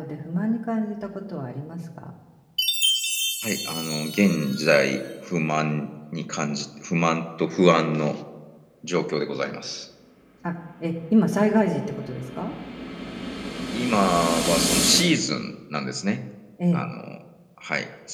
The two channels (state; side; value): identical; both; correlation 1.00